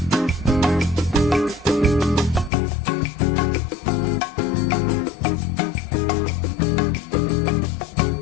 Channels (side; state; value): right; drops out; at 2.5 s